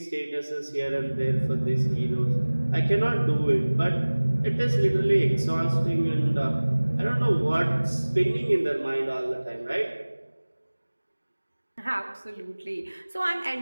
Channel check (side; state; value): both; inverted; correlation -1.00